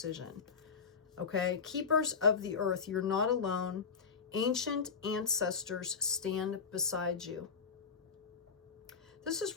Okay. Keepers of the earth, you're not alone. Ancient ancestors stand beside you. This is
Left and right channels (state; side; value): quieter; right; 5.7 dB